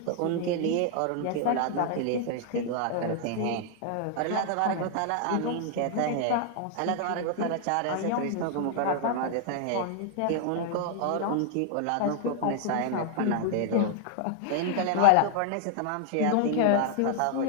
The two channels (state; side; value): different; both; correlation 0.00